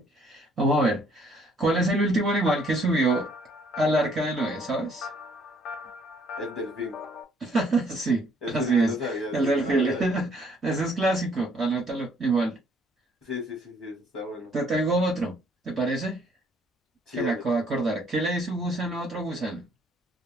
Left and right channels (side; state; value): both; normal; correlation 0.64